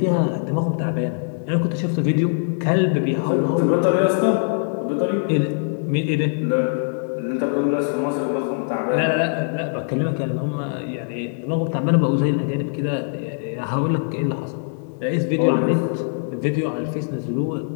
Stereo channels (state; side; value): silent; right; digital silence